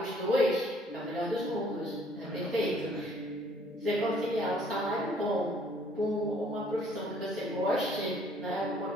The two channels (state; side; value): normal; both; correlation 0.61